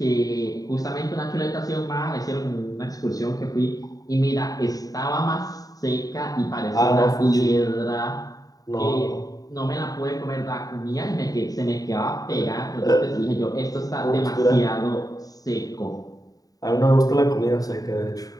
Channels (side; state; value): right; late; 0.18 ms